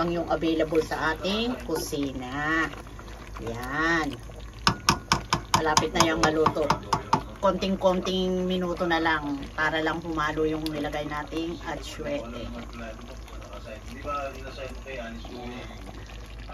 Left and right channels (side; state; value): both; identical; correlation 1.00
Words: yung available sa ating kusina. Yan. Malapit na yung maluto. Konting-konting minuto na lang para lang humalo yung nilagay nating atsuete.